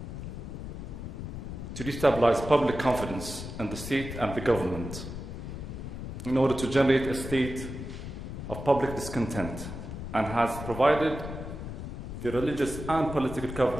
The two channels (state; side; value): noise; left; rumble, 8 dB below the sound